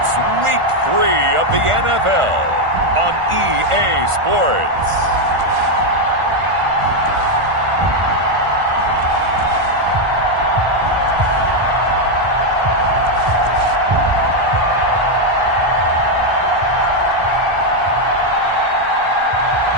Week 3 of the NFL on EA Sports.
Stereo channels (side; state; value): left; late; 1.5 ms